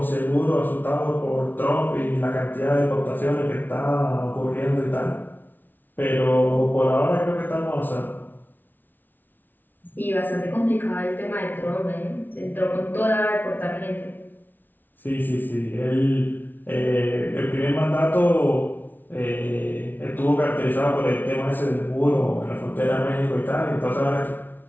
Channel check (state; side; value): late; right; 0.088 ms